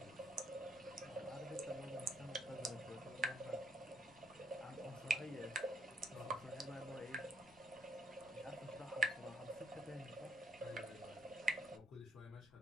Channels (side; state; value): left; noise; rumble, 23 dB below the sound